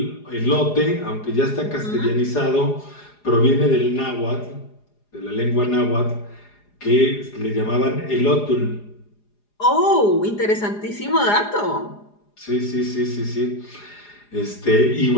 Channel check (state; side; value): late; right; 4.9 ms